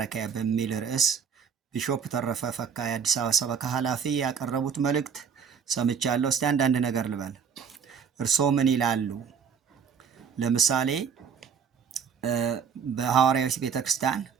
በሚል ርዕስ ቢሾፕ ተረፈ ፈካ የአዲስ አበባ ሰበካ ኃላፊ ያቀረቡት መልእክት ሰምቻለሁ። እስቲ አንዳንድ ነገር ልበል። እርስዎ ምን ይላሉ? ለምሳሌ በሐዋርያዊት ቤተክርስቲያን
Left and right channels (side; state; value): left; quieter; 6.8 dB